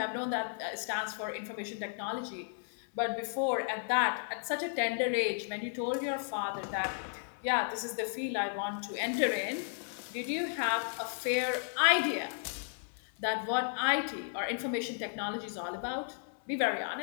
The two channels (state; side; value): silent; right; 55 dB below the other